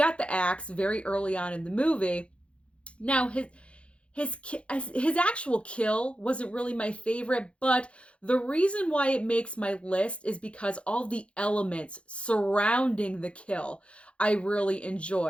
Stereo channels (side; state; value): right; late; 0.060 ms